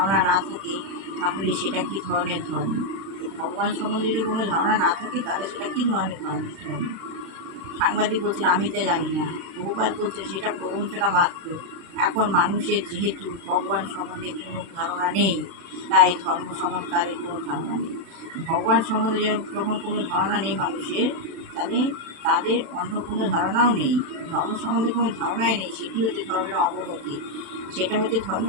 না থাকে তাহলে সেটা কী ধরনের ধর্ম? ভগবান সম্বন্ধে যদি কোনো ধারণা না থাকে তাহলে সেটা কী ধরনের ধর্ম? সাংবাদিক বলছে আমি তো জানি না, প্রভুপাদ বলছে সেটা প্রবঞ্চনা মাত্র। এখন মানুষের যেহেতু ভগবান সম্বন্ধে কোনো ধারণা নেই তাই ধর্ম সম্বন্ধে তাদের কোনো ধারণা নেই। ভগবান সম্বন্ধে যখন কোনো ধারণা নেই মানুষের, তাহলে তাদের অন্য কোনো ধারণাও নেই। ধর্ম সম্বন্ধে কোনো ধারণাই নেই, সেটি হচ্ছে ধর্মের অবনতি। সেটা হচ্ছে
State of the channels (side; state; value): left; late; 36 ms